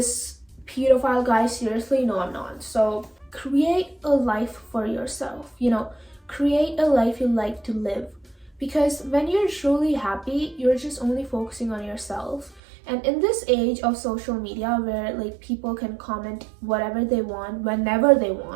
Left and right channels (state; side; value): drops out; left; at 12.6 s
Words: pedophile guy seriously? No, I'm not. So create a life for yourself, you know, create a life you like to live. Because when you're truly happy, you're just only focusing on yourself. And in this age of social media where like people can comment whatever they want, whenever they